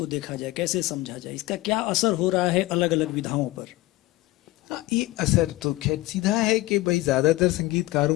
देखा जाए, कैसे समझा जाए, इसका क्या असर हो रहा है अलग अलग विधाओं पर? ये असर तो खैर सीधा है कि भाई ज्यादातर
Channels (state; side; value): quieter; right; 18.7 dB